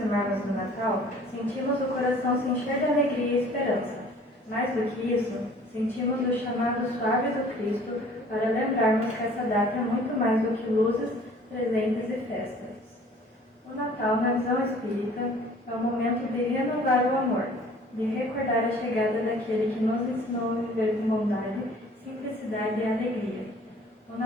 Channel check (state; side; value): normal; both; correlation 0.52